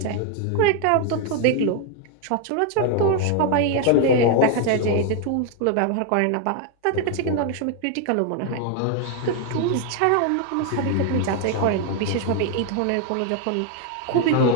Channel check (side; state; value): both; different; correlation 0.00